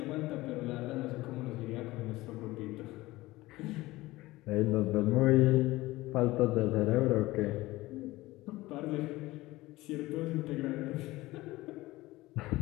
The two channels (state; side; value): quieter; right; 18.9 dB